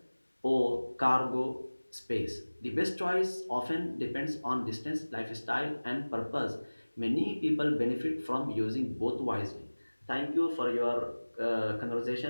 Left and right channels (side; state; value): both; inverted; correlation -1.00